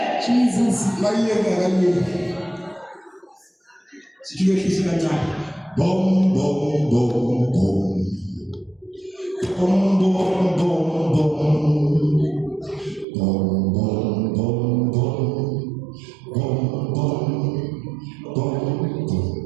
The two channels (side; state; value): left; drops out; at 13.1 s